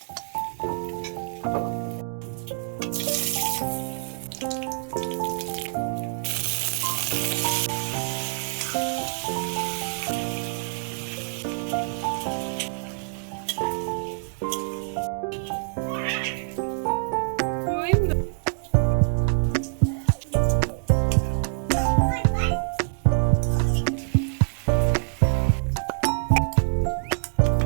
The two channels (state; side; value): silent; left; digital silence